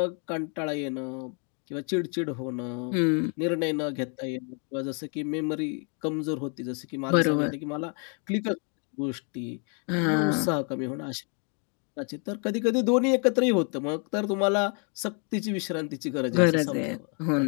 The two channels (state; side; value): quieter; right; 39.8 dB